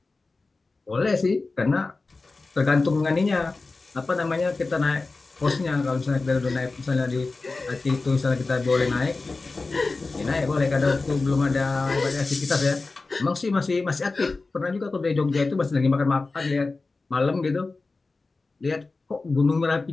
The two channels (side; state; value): right; quieter; 3.7 dB